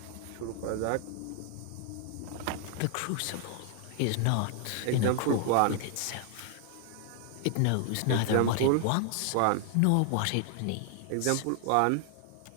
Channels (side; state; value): both; different; correlation 0.00